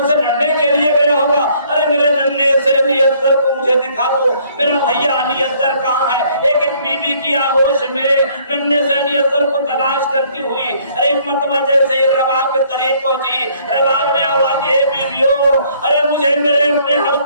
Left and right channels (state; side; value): inverted; both; correlation -0.62